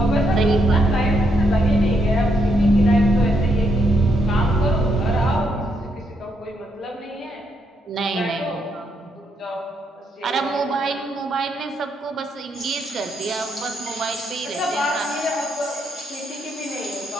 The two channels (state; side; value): normal; both; correlation 0.77